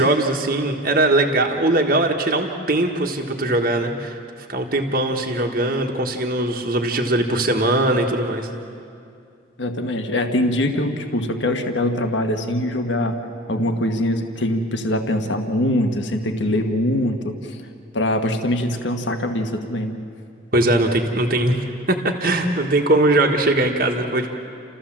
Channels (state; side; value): normal; both; correlation 0.35